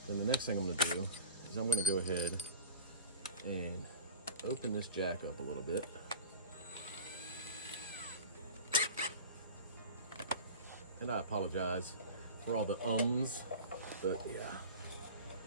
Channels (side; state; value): both; inverted; correlation -0.32